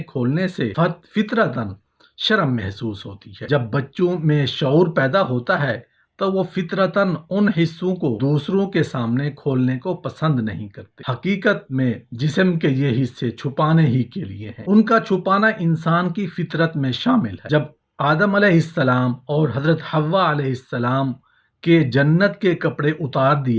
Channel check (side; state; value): both; identical; correlation 1.00